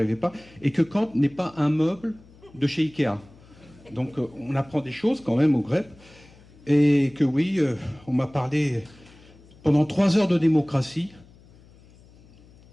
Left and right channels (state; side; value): noise; left; hum, 25 dB below the sound